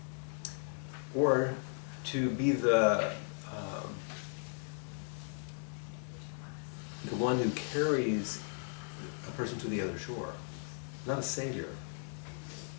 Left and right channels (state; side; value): silent; right; 53 dB below the other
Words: or to be the one who carries a person to the other shore. Not a savior.